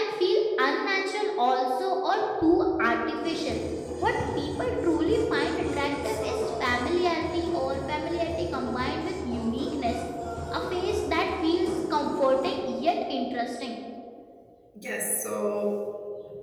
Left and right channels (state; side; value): identical; both; correlation 1.00